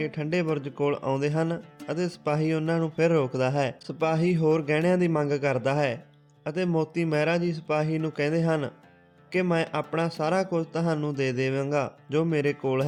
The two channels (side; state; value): both; identical; correlation 1.00